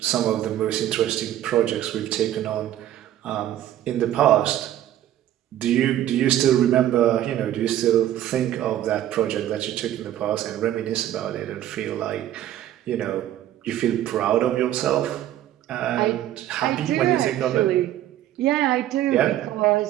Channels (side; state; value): left; quieter; 12.5 dB